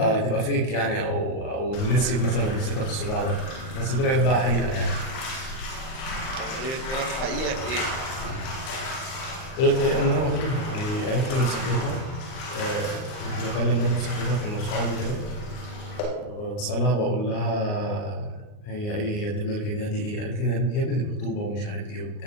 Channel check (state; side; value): late; right; 38 ms